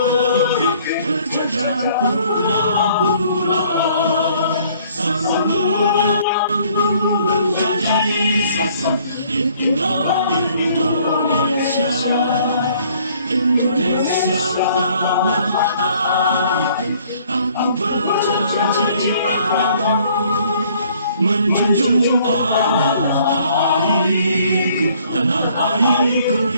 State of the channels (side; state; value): both; inverted; correlation -0.60